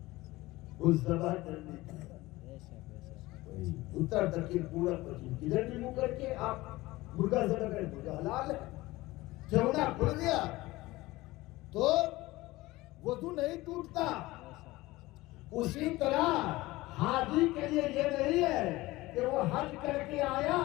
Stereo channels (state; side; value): quieter; right; 19.4 dB